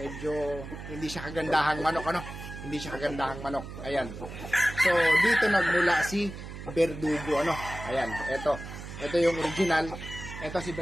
hindi siya kagandahang manok, ano, hindi siya kagandahang manok. Ayan, so dito nagmula si Verdugo, ano. Ayan, ito yung original. Ito si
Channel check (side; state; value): right; noise; hum, 11 dB below the sound